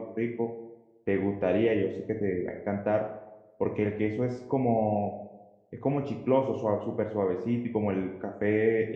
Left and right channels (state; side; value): identical; both; correlation 1.00